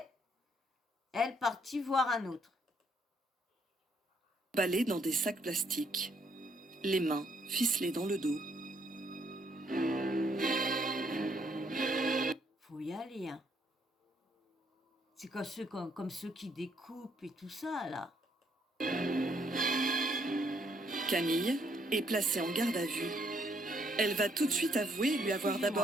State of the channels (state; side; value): normal; both; correlation 0.70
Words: elle, partie voir un autre. Emballés dans des sacs plastiques, les mains ficelées dans le dos. Faut y aller, hein. C'est comme ceux qui découpent et tout ça, là. Camille est placée en garde à vue. Elle va tout de suite avouer lui avoir